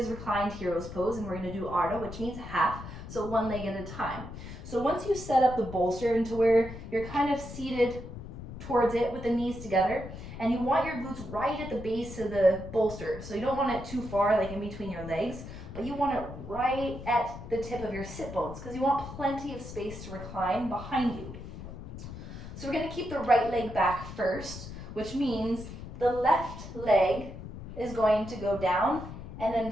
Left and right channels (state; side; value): noise; left; rumble, 11 dB below the sound